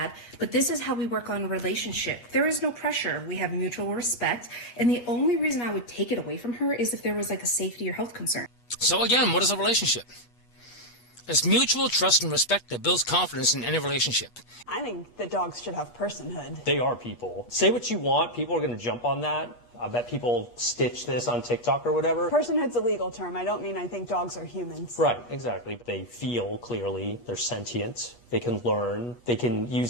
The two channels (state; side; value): late; right; 8.3 ms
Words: But this is how we work on relationship. There is no pressure. We have mutual respect. And the only reason I would take it away from her is if there was like a safety or health concern. So again, what is a relationship? It's mutual trust and respect that builds confidence in any relationship. I think that dogs should have personhood. They are people. Say what you want, people are going to jump on that. I bet people stitch this on TikTok or whatever. Personhood's a legal term. I don't mean I think dogs are humans. Right, exactly. They feel clearly, they're sentient, they can learn, they can